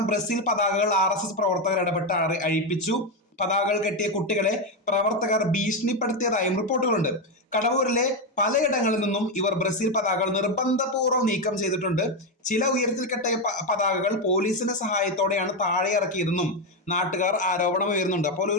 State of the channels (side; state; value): both; normal; correlation 0.08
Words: ബ്രസീൽ പതാകകൾ RSS പ്രവർത്തകർ ഇടപെട്ട് അഴിപ്പിച്ചു. പതാകകൾ കെട്ടിയ കുട്ടികളെ പ്രവർത്തകർ ഭീഷണിപ്പെടുത്തിയതായും റിപ്പോർട്ടുകളുണ്ട്. കടവൂരിലെ പലയിടങ്ങളിൽ നിന്നും ഇവർ ബ്രസീൽ പതാകകൾ നിർബന്ധപൂർവ്വം നീക്കം ചെയ്തിട്ടുണ്ട്. ചില ഉയരത്തിൽ കെട്ടിയ പതാകകൾ പോലീസിന്റെ സഹായത്തോടെയാണ് താഴെ ഇറക്കിയതെന്നും നാട്ടുകാർ ആരോപണം ഉയർന്നുണ്ട്. അപ്പോൾ